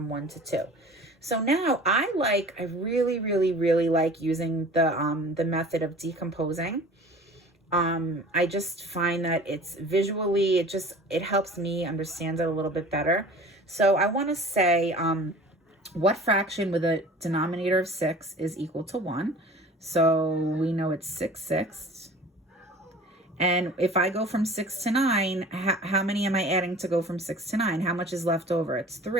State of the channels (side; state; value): both; normal; correlation 0.43